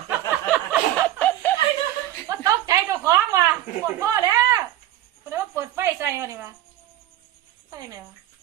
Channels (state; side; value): quieter; left; 13.2 dB